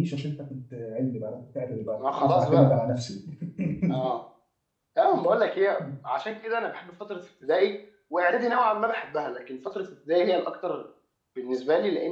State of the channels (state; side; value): identical; both; correlation 1.00